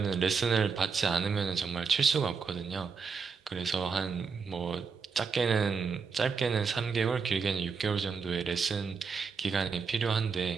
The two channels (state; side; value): quieter; left; 5.4 dB